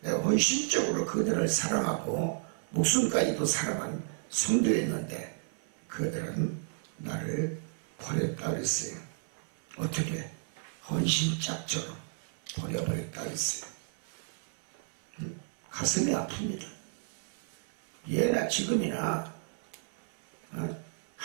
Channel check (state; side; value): silent; left; 56 dB below the other